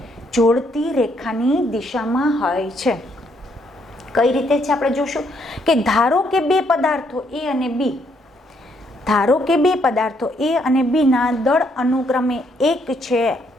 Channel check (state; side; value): normal; both; correlation 0.72